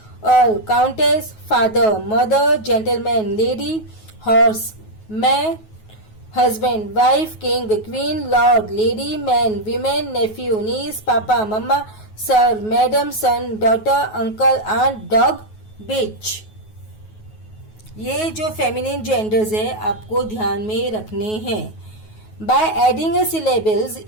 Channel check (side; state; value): right; late; 9.3 ms